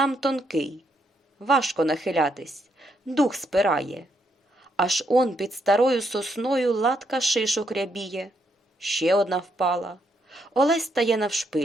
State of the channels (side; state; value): both; normal; correlation 0.76